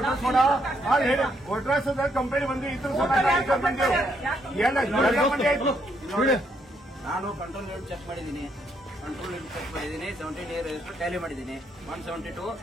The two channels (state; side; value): normal; both; correlation 0.74